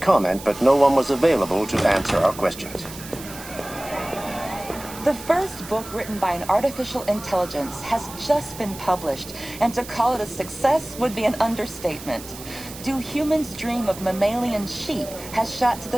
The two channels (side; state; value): right; noise; hiss, 14 dB below the sound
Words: but no one was available to answer our questions. The first book written by an artificial intelligence has just been published, and to call it a success would be an understatement. Do Humans Dream of Mammalian Sheep has shot to